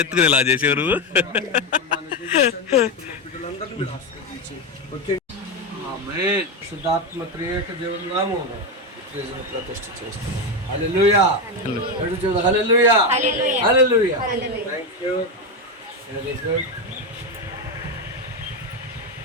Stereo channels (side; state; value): both; normal; correlation 0.11